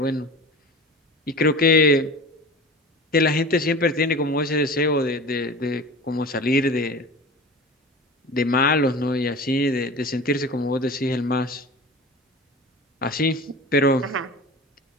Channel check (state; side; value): normal; both; correlation 0.36